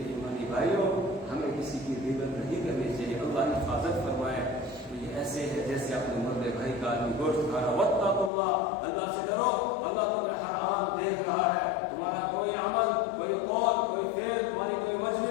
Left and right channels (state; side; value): drops out; right; at 8.3 s